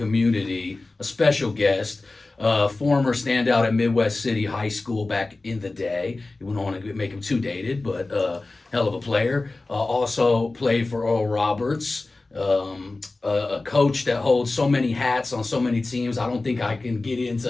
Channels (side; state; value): right; quieter; 3.3 dB